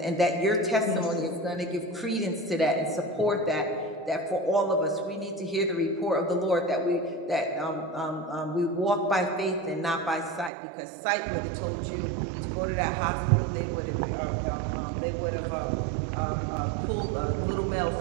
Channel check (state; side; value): drops out; left; at 10.5 s